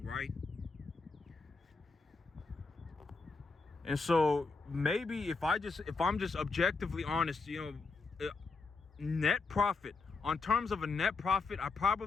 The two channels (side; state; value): right; quieter; 4.2 dB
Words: right? And so maybe if I'm just objectively honest, net profit, on terms of a net profit, I